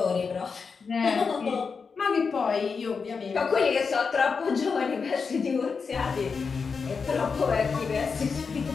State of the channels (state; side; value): quieter; right; 5.3 dB